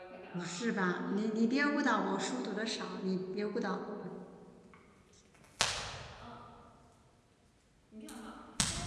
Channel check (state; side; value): identical; both; correlation 1.00